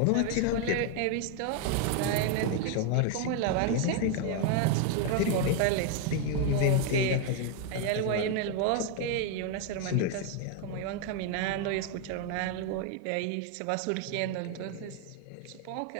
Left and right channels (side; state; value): both; different; correlation 0.01